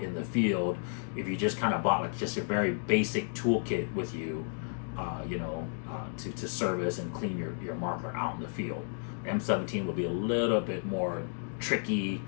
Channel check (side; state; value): right; silent; 56 dB below the other